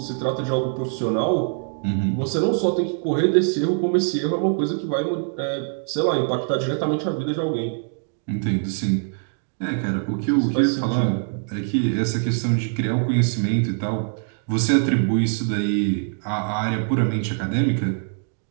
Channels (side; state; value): left; silent; 63 dB below the other